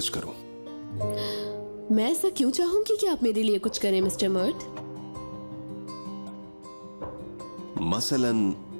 करूं। मैं ऐसा क्यों चाहूंगी कि आप मेरे लिए कुछ करें मिस्टर मर्ट? मसलन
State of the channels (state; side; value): inverted; both; correlation -1.00